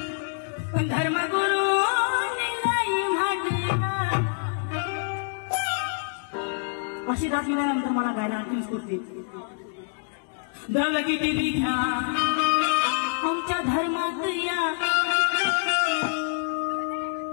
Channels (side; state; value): right; silent; digital silence